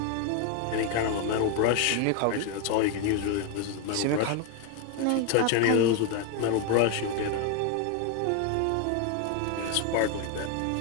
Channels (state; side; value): different; both; correlation 0.01